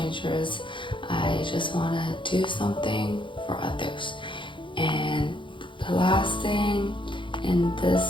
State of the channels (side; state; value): right; late; 0.24 ms